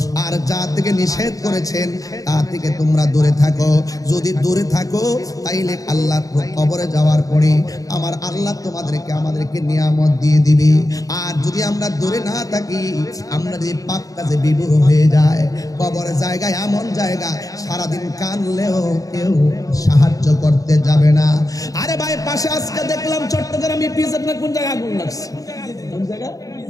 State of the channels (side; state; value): right; late; 0.17 ms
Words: আর যা থেকে নিষেধ করেছেন তা থেকে তোমরা দূরে থাকো। যদি দূরে থাকো, তাইলে আল্লাহ কবরে যাওয়ার পরে আমার আল্লাহ তোমাদেরকে আমাদেরকে নিয়ামত দিয়ে দিবে। আর যদি আমরা দূরে না থাকি, আমরা যদি পাপ কাজে বিভোর হয়ে যায়, কবরের জায়গায় এমন জায়গা, সারাদিন কানলেও কেউ সাহায্য করতে যাবে না। আরে ভাই, পাশে আজকে দেখলাম চট্টগ্রামে পিজের না কোন জায়গায় আগুন লাগছে, কোন জায়গা